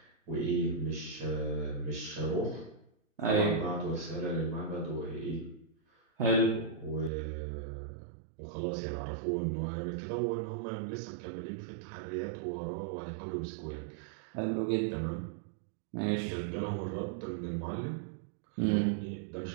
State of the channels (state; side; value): drops out; left; at 7.1 s